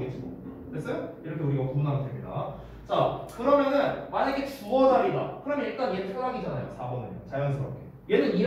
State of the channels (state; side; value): identical; both; correlation 1.00